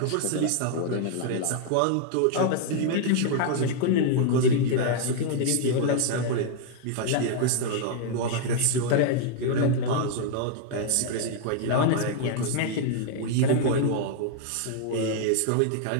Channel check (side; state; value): both; different; correlation 0.00